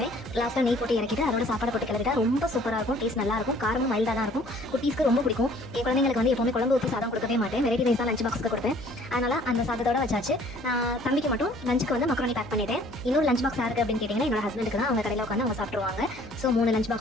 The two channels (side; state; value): left; noise; hum, 18 dB below the sound